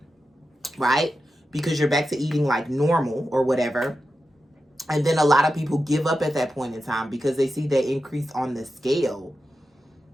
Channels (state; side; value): normal; both; correlation 0.91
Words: right? Because you're back to eating like normal or whatever. And then a lot of people give up at that point in time because they see that increase on the scale.